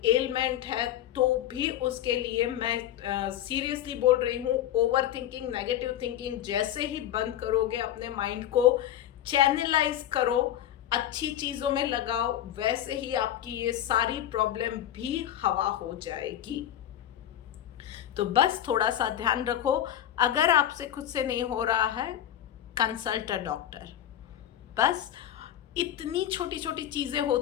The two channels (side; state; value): right; quieter; 11.5 dB